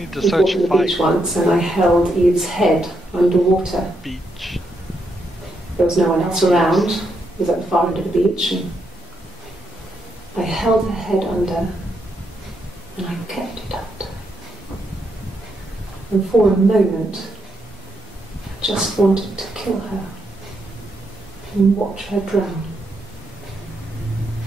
to We'd search walked to the fight. beach once and I held Eve's head underwater. Beach. There was no one else around. It was at the far end of the beach. And I held her head under and I kept it under. And for a moment, I just wanted to kill her and watch her drown.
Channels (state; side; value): normal; both; correlation 0.79